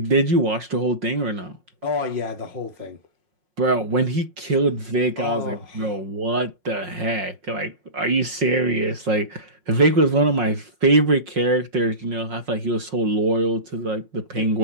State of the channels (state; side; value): late; left; 5.5 ms